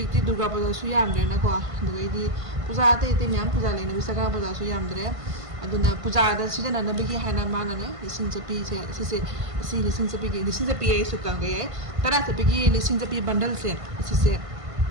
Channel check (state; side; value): late; left; 1.5 ms